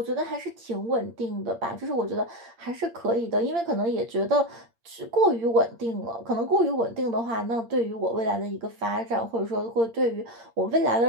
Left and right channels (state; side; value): late; left; 8.7 ms